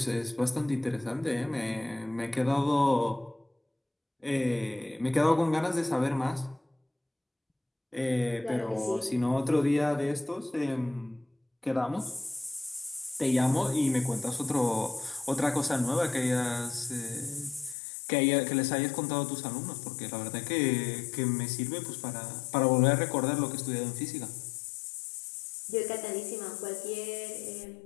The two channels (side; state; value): right; drops out; at 17.8 s